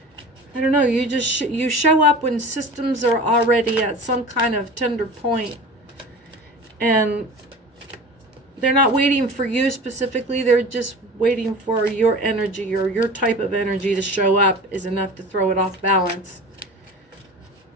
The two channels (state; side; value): normal; both; correlation 0.37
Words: don't know, you just, you show up when systems are already at some kind of tender point. And they're not waiting for you specifically, they're just waiting for your energy, or your type of energy to show up is enough to throw it off balance.